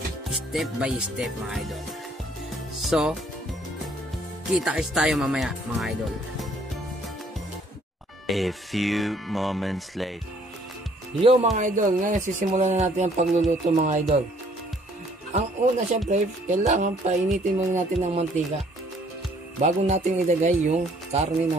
step by step mga idol. So, kita-kits tayo mamaya mga idol. A few moments later. Yo mga idol, ngayon sisimulan na natin ang pagluluto mga idol. Ang una syempre, kailangan painitin muna natin ng mantika bago natin ilagay yung karne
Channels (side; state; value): both; normal; correlation 0.62